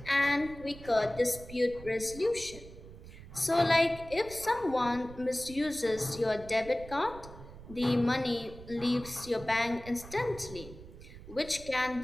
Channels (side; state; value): right; noise; rumble, 16 dB below the sound